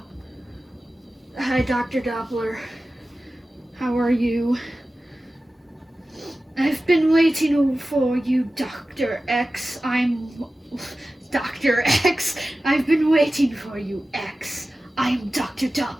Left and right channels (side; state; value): both; normal; correlation 0.95